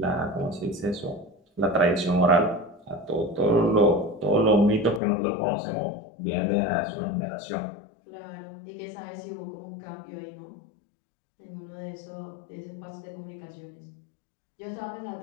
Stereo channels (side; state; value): right; drops out; at 5.0 s